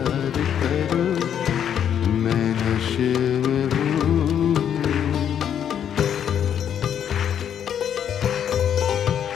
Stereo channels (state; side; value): quieter; right; 9.0 dB